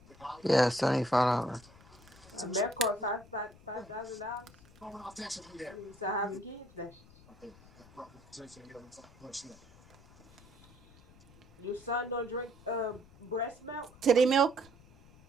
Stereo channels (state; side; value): noise; left; rumble, 24 dB below the sound